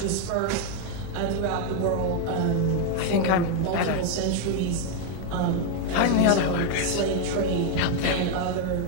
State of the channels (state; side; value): different; both; correlation 0.01